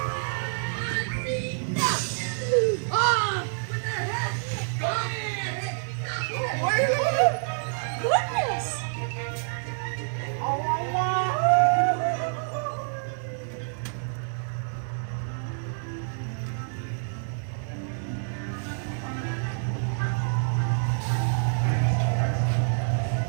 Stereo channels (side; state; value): left; silent; 57 dB below the other